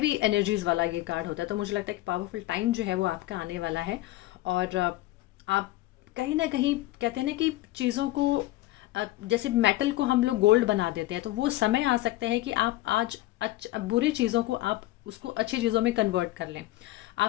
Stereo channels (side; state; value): right; quieter; 16.9 dB